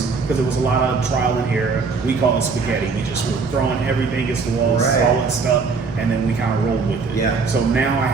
because it was a lot of trial and error. We call it spaghetti. We just were throwing everything against the walls, solid stuff, and then we kind of rolled with it. Yeah. So now I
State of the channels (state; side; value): quieter; left; 4.7 dB